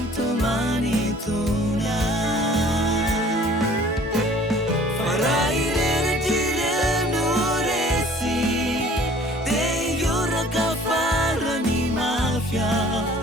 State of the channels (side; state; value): both; normal; correlation 0.52